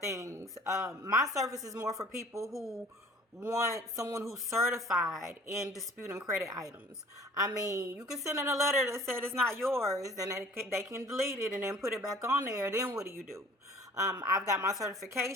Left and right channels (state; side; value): normal; both; correlation 0.49